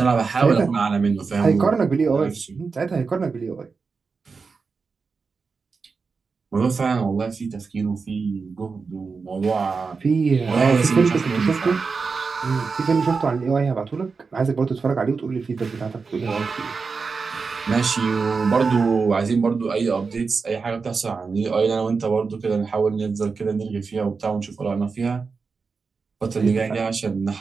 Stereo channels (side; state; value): left; quieter; 4.8 dB